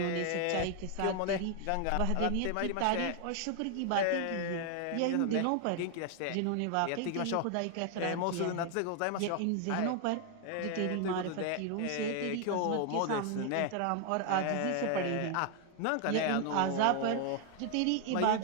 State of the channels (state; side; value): different; both; correlation 0.00